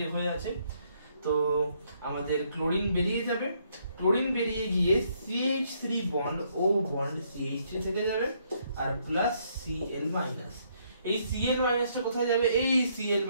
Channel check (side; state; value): both; inverted; correlation -0.71